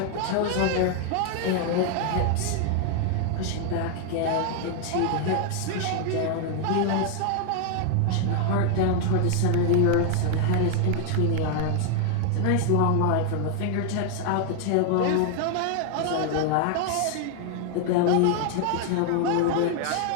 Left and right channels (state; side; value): different; both; correlation 0.00